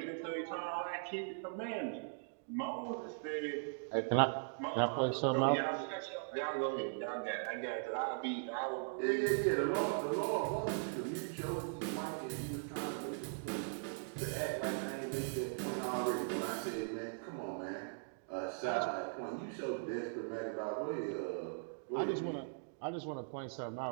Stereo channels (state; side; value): silent; left; digital silence